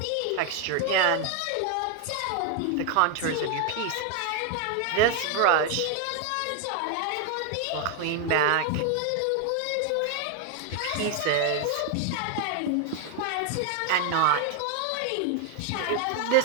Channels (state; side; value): different; both; correlation 0.01